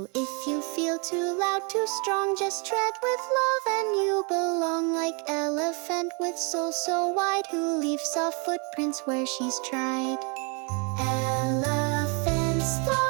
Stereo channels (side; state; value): left; quieter; 33.5 dB